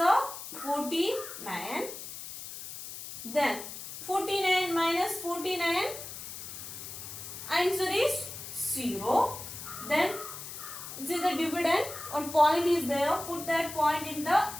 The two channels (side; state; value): left; noise; hiss, 10 dB below the sound